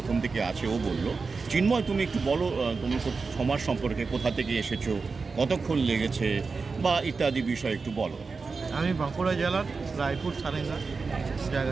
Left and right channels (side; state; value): left; quieter; 4.5 dB